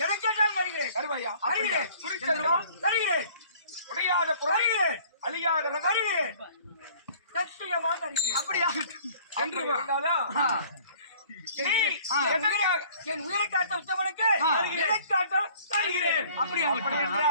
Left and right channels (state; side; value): inverted; both; correlation -0.53